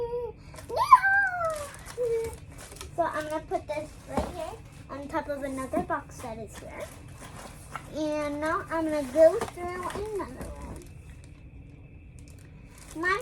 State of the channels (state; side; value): identical; both; correlation 1.00